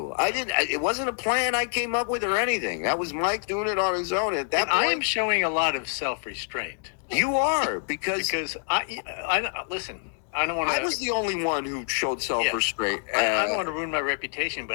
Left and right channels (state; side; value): silent; right; 61 dB below the other